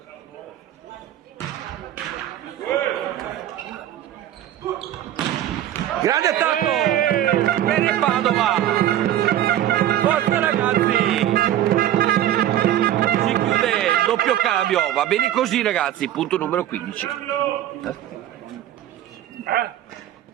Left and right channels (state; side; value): quieter; left; 12.0 dB